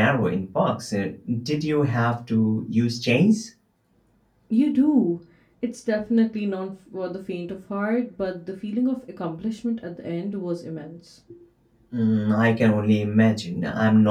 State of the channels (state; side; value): identical; both; correlation 1.00